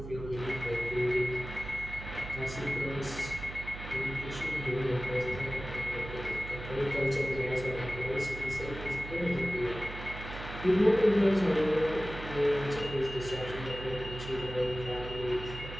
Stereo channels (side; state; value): right; noise; hum, 10 dB below the sound